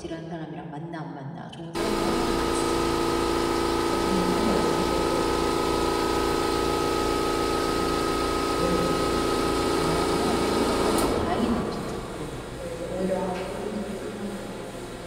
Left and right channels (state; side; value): identical; both; correlation 1.00